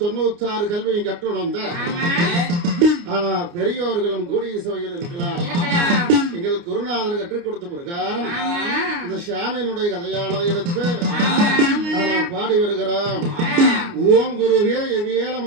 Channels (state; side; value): late; left; 29 ms